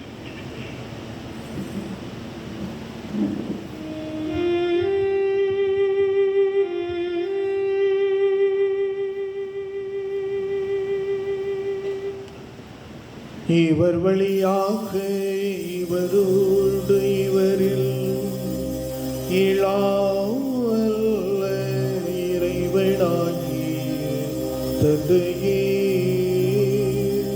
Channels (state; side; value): identical; both; correlation 1.00